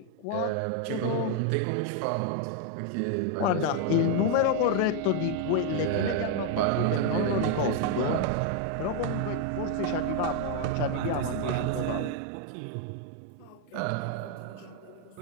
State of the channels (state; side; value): different; both; correlation 0.01